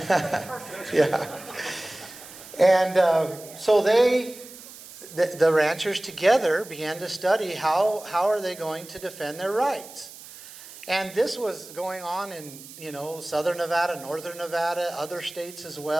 Yeah. And so the ranchers together began to study how are they going to defend their rights. And this was going on in, southern Nevada, northern Nevada, other states as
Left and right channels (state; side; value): noise; right; hiss, 17 dB below the sound